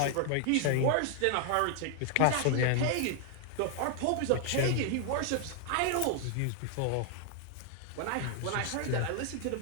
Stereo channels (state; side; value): different; both; correlation 0.00